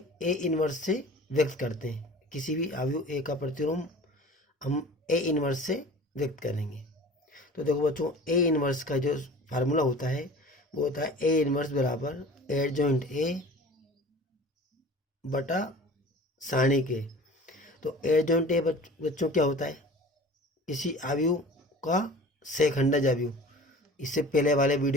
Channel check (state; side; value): normal; both; correlation 0.42